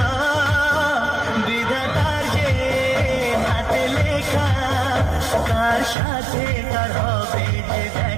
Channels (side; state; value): left; drops out; at 6.0 s